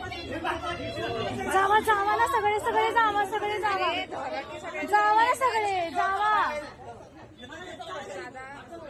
जावा जावा ना सगळे सगळे जावा सगळे जावा जावा ना सगळे जावा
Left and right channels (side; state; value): both; identical; correlation 1.00